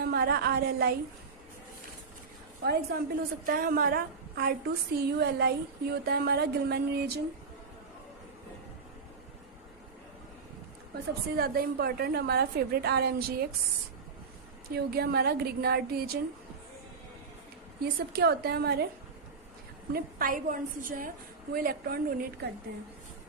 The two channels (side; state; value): left; quieter; 5.0 dB